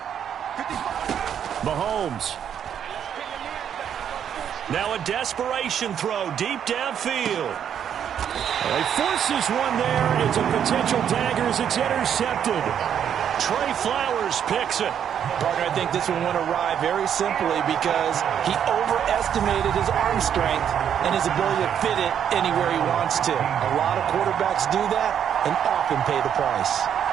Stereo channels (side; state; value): left; quieter; 8.9 dB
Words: Mahomes. Now a desperation throw deep downfield. He forces one there. It's a potential dagger as it's intercepted. Trey Flowers picks it. Partner, I think this one went awry very simply because he overestimated his arm strength and his ability to fit it anywhere he wants to. A lot of quarterbacks do that and often pay the price.